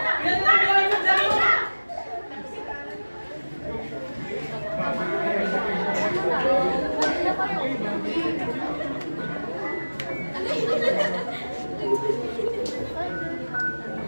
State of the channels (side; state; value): both; inverted; correlation -1.00